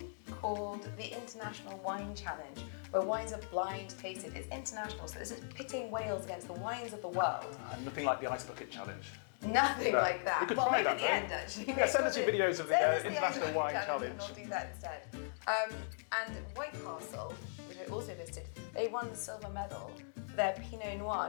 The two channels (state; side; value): silent; right; digital silence